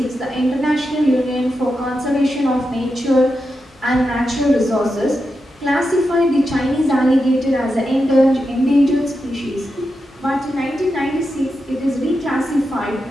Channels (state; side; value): normal; both; correlation 0.88